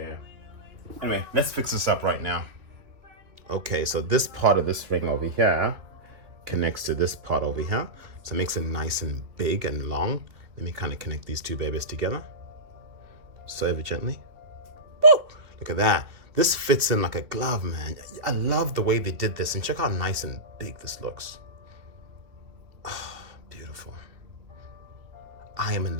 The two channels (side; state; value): left; late; 2.6 ms